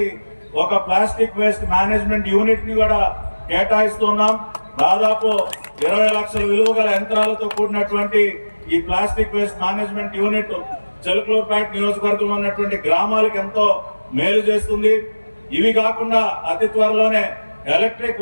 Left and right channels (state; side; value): inverted; both; correlation -1.00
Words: ఒక ప్లాస్టిక్ వేస్ట్ మేనేజ్మెంట్ యూనిట్ ని కూడా కేటాయిస్తున్నాం. దాదాపు 20 లక్షల విలువ గల యంత్రాలతో కూడినటువంటి ఈ plastic waste management unit Chilakaluripet నియోజకవర్గంలో ఉన్నటువంటి గ్రామాలకు ఎంతో మేలు చేస్తుంది. ఇవి కాకుండా అతి త్వరలోనే ఎలక్ట్రిక్